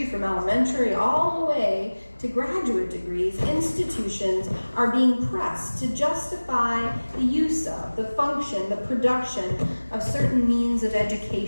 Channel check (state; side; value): inverted; both; correlation -1.00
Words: from elementary all the way to graduate degrees, institutions are being pressed to justify the use of, the function, the production of certain means of